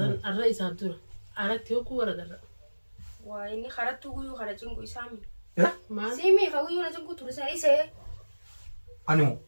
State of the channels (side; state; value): both; inverted; correlation -1.00